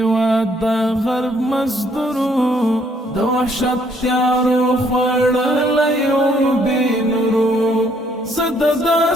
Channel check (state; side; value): normal; both; correlation 0.67